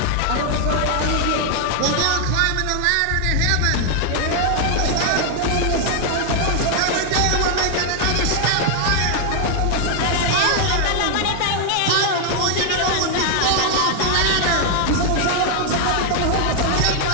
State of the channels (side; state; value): both; different; correlation 0.00